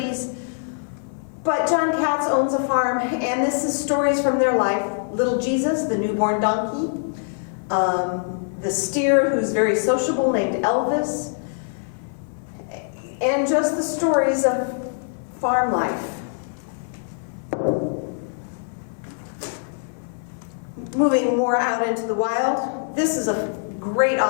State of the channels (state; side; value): silent; right; 57 dB below the other